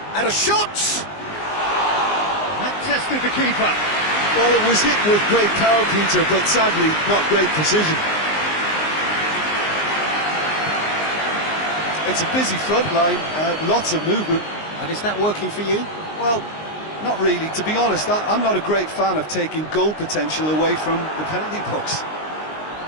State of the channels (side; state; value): right; late; 19 ms